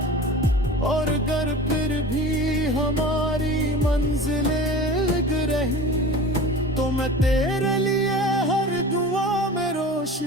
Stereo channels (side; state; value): both; normal; correlation 0.36